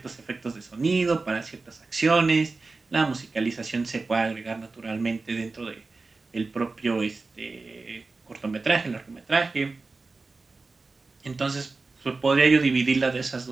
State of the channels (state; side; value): quieter; left; 3.8 dB